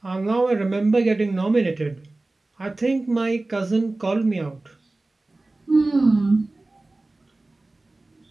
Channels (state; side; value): quieter; left; 3.0 dB